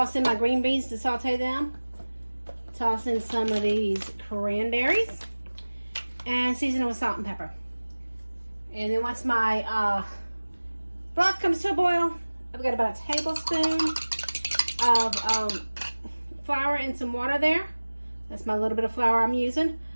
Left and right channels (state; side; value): inverted; both; correlation -1.00